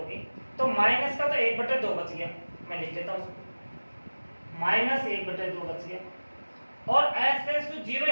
तो माइनस का तो 1/2 बच गया, मैं लिख देता हूँ माइनस 1/2 बच गया, और h टेंड्स टू 0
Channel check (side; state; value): both; inverted; correlation -1.00